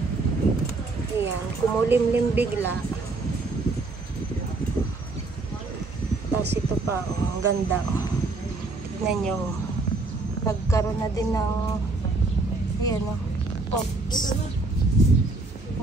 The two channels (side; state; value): left; quieter; 3.4 dB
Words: Ayan, kumulimlim bigla. Tapos ito pa, ang ganda. Tignan nyo. Nagkaroon na din ng ayan pops.